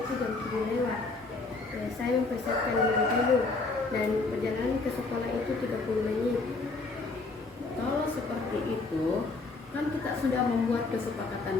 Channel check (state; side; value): quieter; right; 3.7 dB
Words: jam 7 lewat. Saya mempersiapkan diri dulu dan perjalanan ke sekolah itu 30 menit. Kalau seperti itu, kan kita sudah membuat kesepakatan